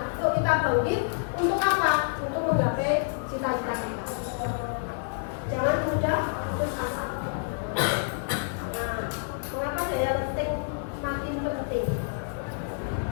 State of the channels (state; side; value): silent; right; digital silence